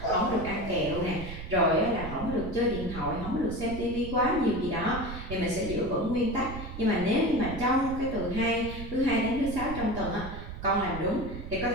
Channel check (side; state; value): right; noise; rumble, 9 dB below the sound